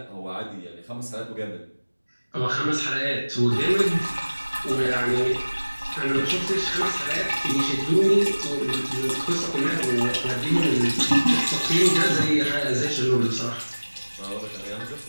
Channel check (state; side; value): inverted; both; correlation -1.00